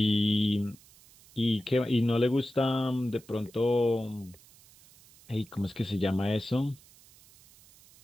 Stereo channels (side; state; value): right; noise; hiss, 25 dB below the sound